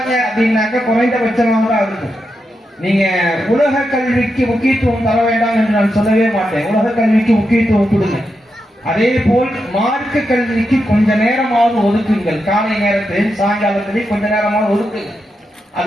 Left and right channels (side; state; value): both; normal; correlation 0.86